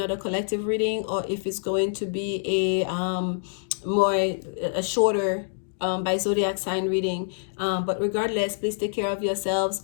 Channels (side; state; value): right; silent; digital silence